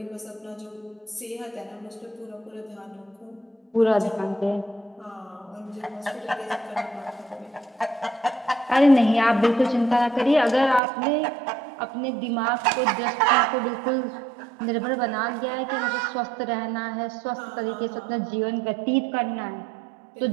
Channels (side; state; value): left; drops out; at 10.8 s